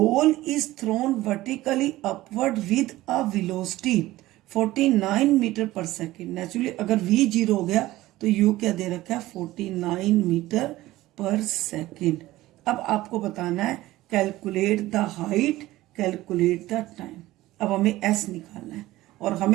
is thrown vertically upward with a velocity 49 metre पर सेकेंड। नेचुरली अगर v जीरो हो गया तो u क्या दे रखा है, 49 मीटर पर सेकेंड। अब आपको बताना है calculate the height, calculate the time. अब हमें एस निकालना है और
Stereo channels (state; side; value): quieter; left; 16.9 dB